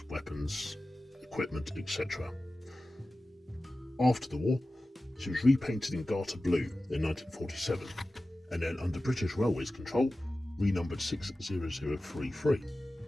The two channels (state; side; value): normal; both; correlation 0.95